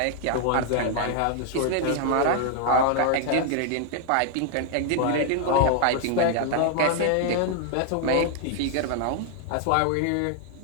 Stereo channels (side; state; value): both; different; correlation 0.00